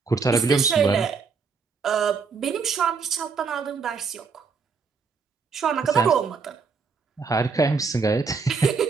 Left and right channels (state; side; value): quieter; left; 5.1 dB